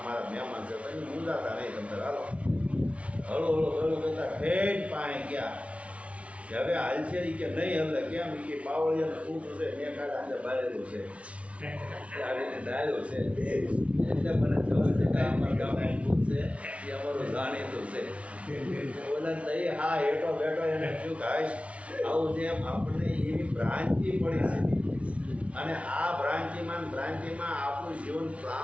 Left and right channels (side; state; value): left; late; 0.063 ms